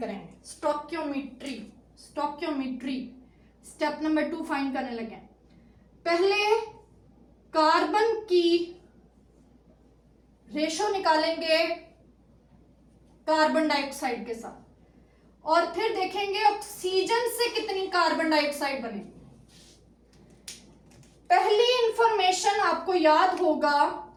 करेंगे। स्टोक्योमेट्री स्टेप नंबर 2 फाइंड करने लगे। पहले कार्बन की रेशो निकालेंगे कार्बन डाइऑक्साइड के साथ, और फिर देखेंगे ऑक्सीजन से कितनी कार्बन डाइऑक्साइड बनेगी। पहली इंफॉर्मेशन आपको याद होगा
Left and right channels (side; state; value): both; identical; correlation 1.00